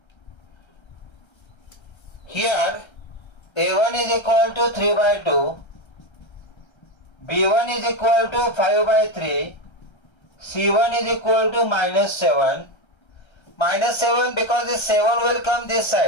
Here A1 is equal to 3 by 2, B1 is equal to 5 by 3, C1 is equal to minus 7. Minus 7 because this 7 will come this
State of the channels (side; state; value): right; late; 1.3 ms